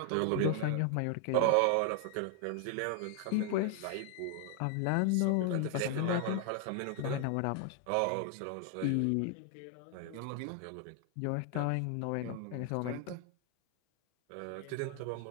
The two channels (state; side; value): different; both; correlation 0.00